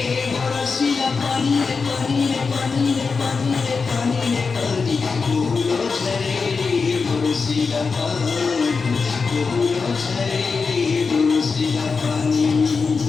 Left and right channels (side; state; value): right; quieter; 4.8 dB